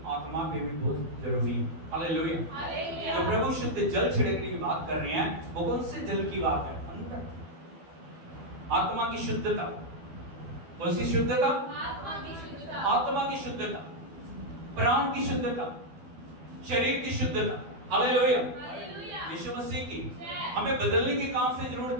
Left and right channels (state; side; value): late; left; 12 ms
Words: आत्मा पे भी बहुत जरूरी है। हालेलुया। तो प्रभु शुद्ध जल छिड़कने की बात कर रहे हैं, वो कौन से जल की बात है? आत्मा की शुद्धता। कौन सी शुद्धता? आत्मा की शुद्धता, प्राण की शुद्धता, शरीर की शुद्धता। हालेलुया। यीशु मसीह की हमें बदलने की कहां से